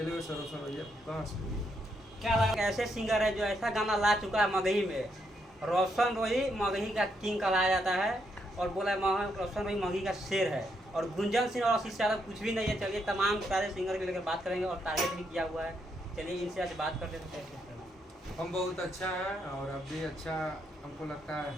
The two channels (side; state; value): both; normal; correlation 0.78